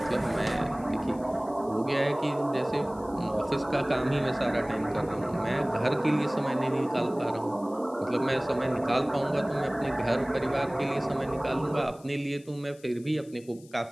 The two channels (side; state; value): left; noise; hiss, 26 dB below the sound